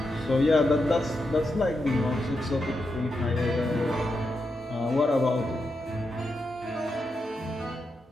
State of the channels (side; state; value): both; normal; correlation 0.86